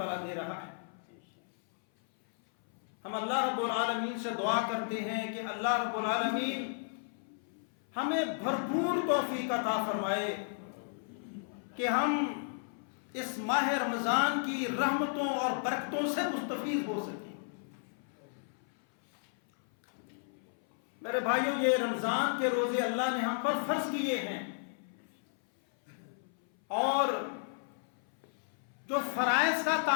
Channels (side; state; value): right; silent; 55 dB below the other